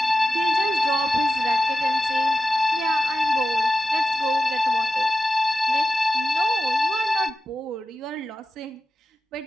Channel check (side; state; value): both; normal; correlation 0.92